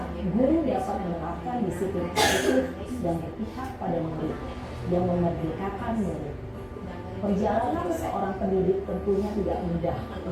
guru dapat menerapkan disiplin positif dan berpihak pada murid, yang memerdekakan murid. Perjalanan seorang pendidik tentunya tidak mudah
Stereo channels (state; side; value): identical; both; correlation 1.00